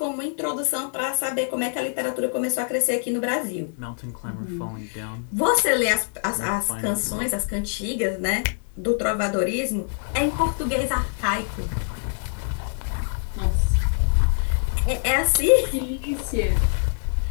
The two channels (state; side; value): silent; right; digital silence